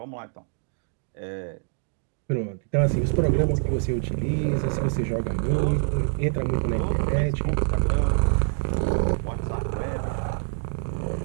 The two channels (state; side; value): silent; left; digital silence